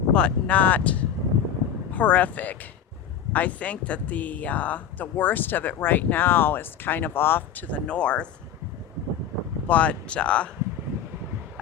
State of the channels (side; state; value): right; quieter; 8.8 dB